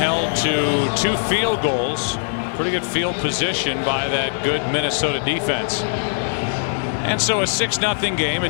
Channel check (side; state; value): right; silent; digital silence